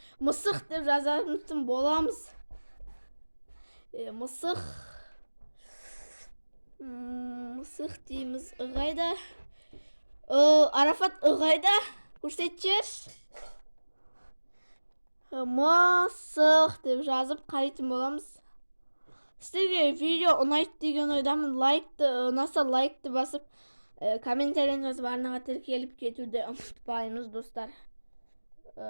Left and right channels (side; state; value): both; inverted; correlation -1.00